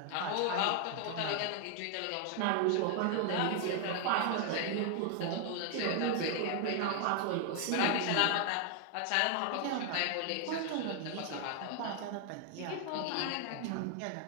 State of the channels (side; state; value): both; different; correlation 0.00